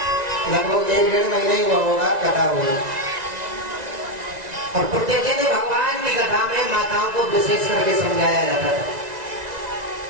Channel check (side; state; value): left; late; 1.9 ms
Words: लगभग 1-1.5 महीने ही हुआ होगा कथा हुई। और प्रतिदिन भगवान की कथा में माताओं को विशेष करके समझाया जाता था।